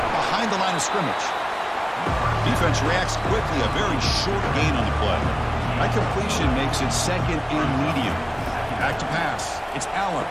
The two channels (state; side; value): identical; both; correlation 1.00